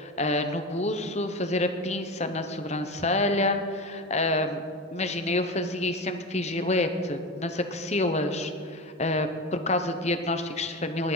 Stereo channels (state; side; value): normal; both; correlation 0.24